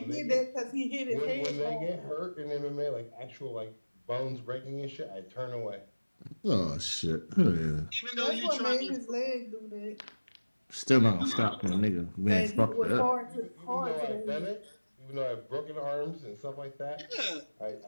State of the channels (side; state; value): both; inverted; correlation -1.00